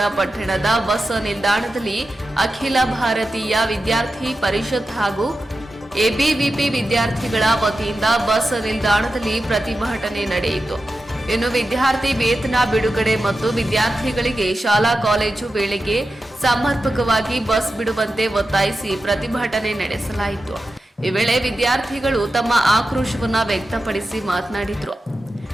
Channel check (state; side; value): normal; both; correlation 0.91